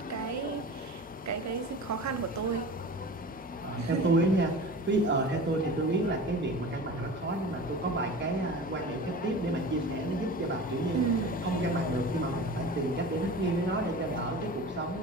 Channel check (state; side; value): normal; both; correlation 0.35